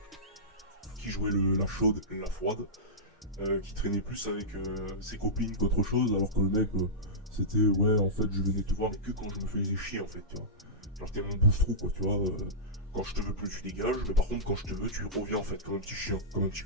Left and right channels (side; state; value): both; normal; correlation -0.15